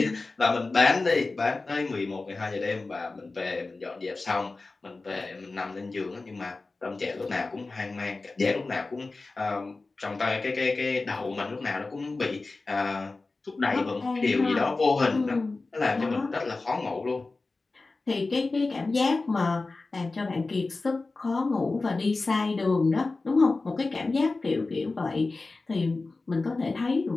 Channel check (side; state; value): right; quieter; 3.6 dB